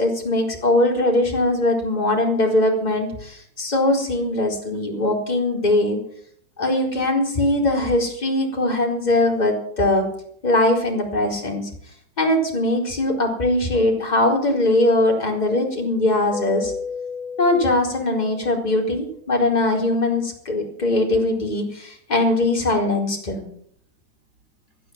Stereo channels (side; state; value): right; late; 2.1 ms